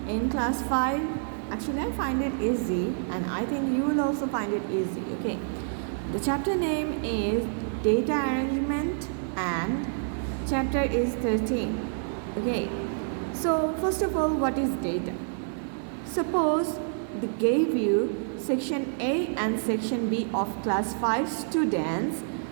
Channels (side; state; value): left; silent; 59 dB below the other